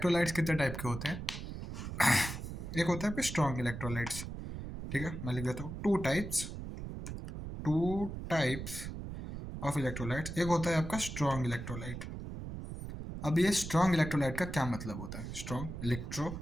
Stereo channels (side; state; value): right; noise; rumble, 7 dB below the sound